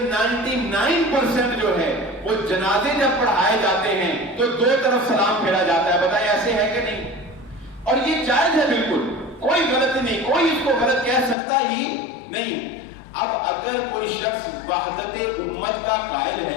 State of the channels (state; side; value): drops out; right; at 11.4 s